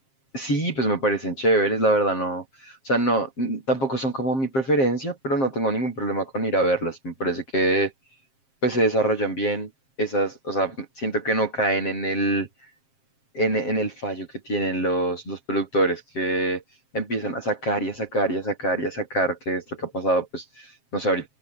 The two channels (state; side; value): late; right; 7.5 ms